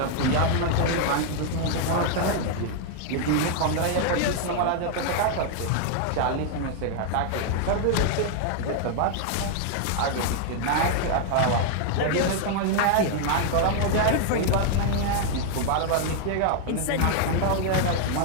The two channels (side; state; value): both; different; correlation 0.00